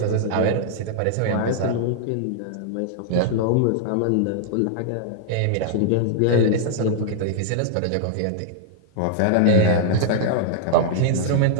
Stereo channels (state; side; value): different; both; correlation -0.01